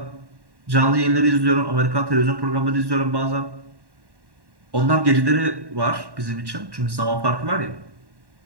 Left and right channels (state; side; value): late; left; 1.1 ms